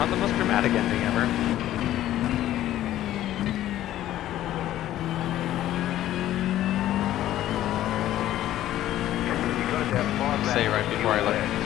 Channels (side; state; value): right; quieter; 13.2 dB